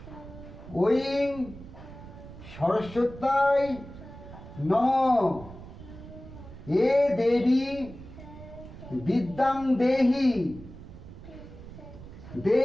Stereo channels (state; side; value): noise; right; rumble, 15 dB below the sound